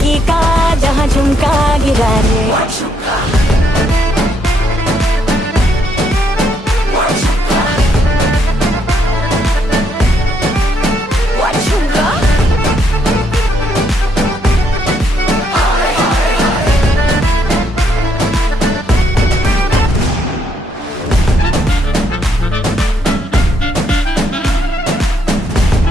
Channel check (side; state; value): both; normal; correlation 0.73